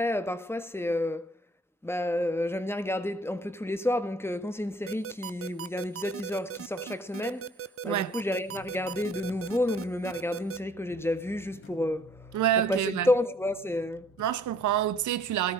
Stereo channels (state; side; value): normal; both; correlation 0.58